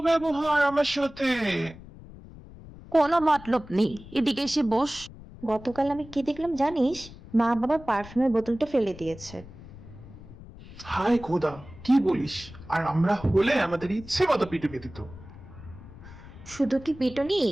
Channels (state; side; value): noise; left; rumble, 17 dB below the sound